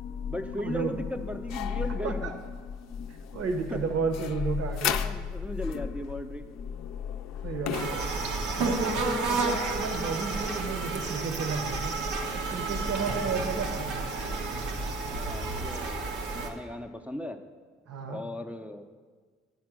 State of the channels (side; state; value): both; normal; correlation 0.48